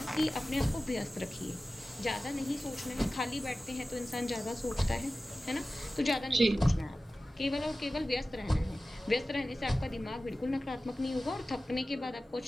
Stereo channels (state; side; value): normal; both; correlation 0.96